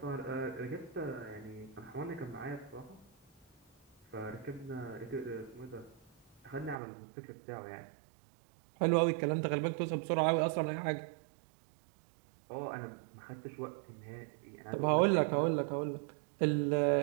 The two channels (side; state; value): left; drops out; at 6.8 s